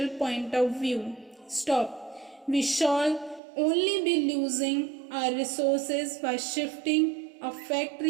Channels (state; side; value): drops out; left; at 3.4 s